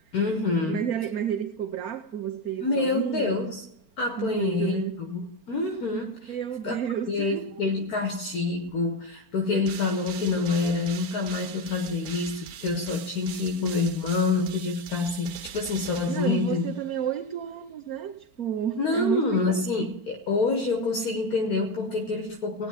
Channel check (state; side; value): late; right; 4.4 ms